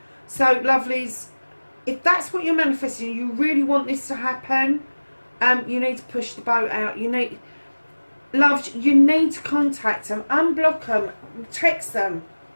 So, lovelies, if that's what you're manifesting, you really want this to happen, you need to push the boat out. You need to contact them, unblock them, text them,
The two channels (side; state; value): both; inverted; correlation -1.00